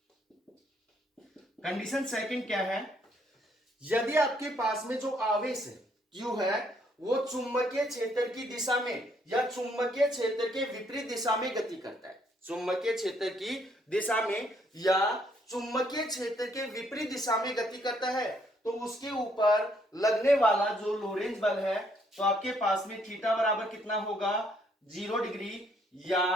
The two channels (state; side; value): normal; both; correlation 0.69